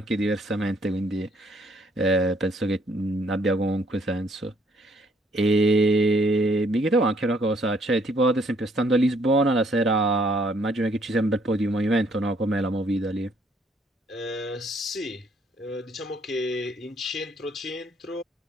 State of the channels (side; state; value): both; normal; correlation 0.66